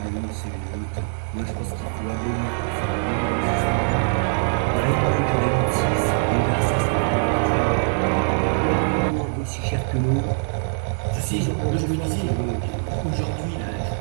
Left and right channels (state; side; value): silent; left; 63 dB below the other